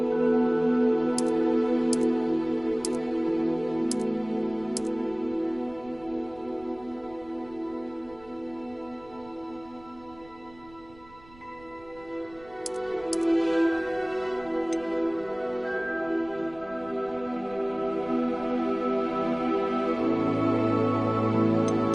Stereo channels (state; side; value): noise; right; rumble, 24 dB below the sound